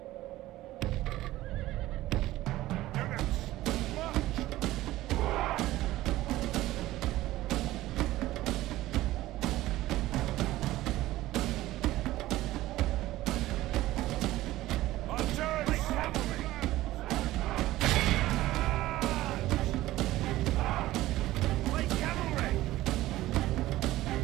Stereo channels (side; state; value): left; quieter; 16.2 dB